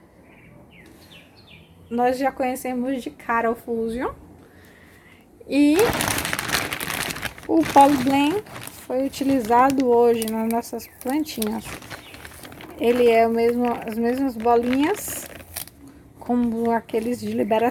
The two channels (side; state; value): both; identical; correlation 1.00